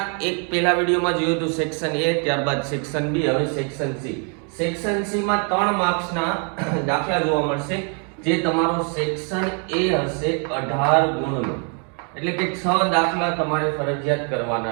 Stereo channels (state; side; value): quieter; left; 39.3 dB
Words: પહેલા વિડીયોમાં જોયું હતું સેક્શન એ, ત્યારબાદ સેક્શન બી, હવે સેક્શન સી. સેક્શન સી માં 3 માર્ક્સના દાખલા જોવા મળશે, જે તમારો સેક્શન એ હશે 18 ગુણનો, એટલે કે 6 દાખલા તમારે ફરજિયાત